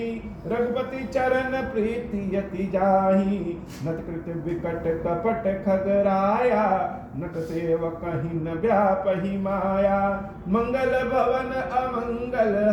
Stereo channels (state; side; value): identical; both; correlation 1.00